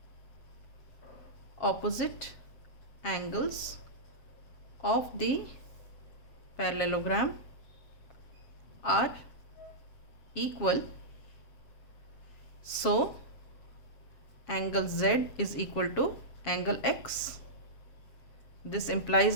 opposite angles of the parallelogram are equal. So angle z is equal to angle x. This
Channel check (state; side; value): late; right; 7.3 ms